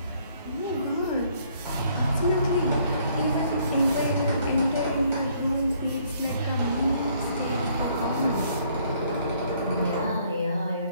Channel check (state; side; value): inverted; both; correlation -0.65